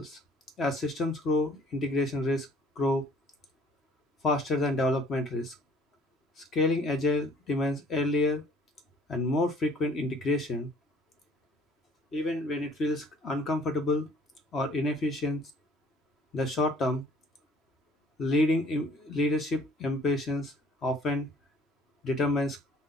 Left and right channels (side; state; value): both; normal; correlation 0.56